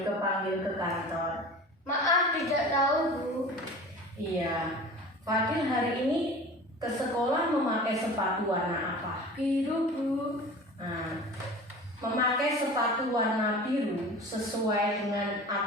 panggil ke kantor? Maaf tidak tahu Bu. Iya, Fadil hari ini ke sekolah memakai sepatu warna apa? Biru Bu. Nah, memakai sepatu warna biru sesuai dengan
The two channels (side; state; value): both; normal; correlation 0.38